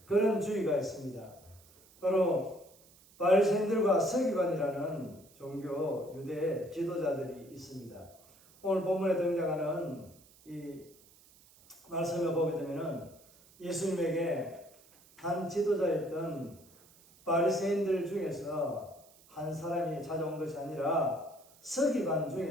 그런 주의가 있습니다. 바로 바리새인들과 서기관이라는 종교 유대 지도자들이 있습니다. 오늘 본문에 등장하는 이 말씀을 보게 되면은 예수님에게 한 지도자였던 바리새인들 중에서 한 사람이 찾아온 것이 아니라 서기관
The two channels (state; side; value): noise; right; hiss, 26 dB below the sound